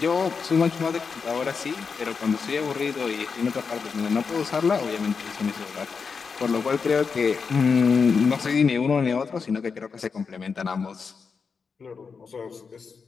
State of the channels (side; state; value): right; quieter; 5.4 dB